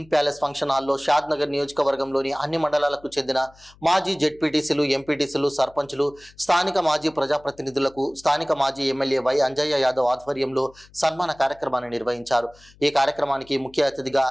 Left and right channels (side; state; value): left; noise; hum, 27 dB below the sound